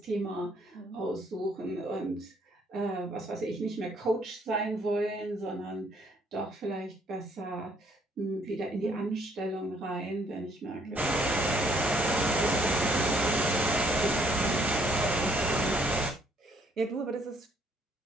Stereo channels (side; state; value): both; normal; correlation 0.65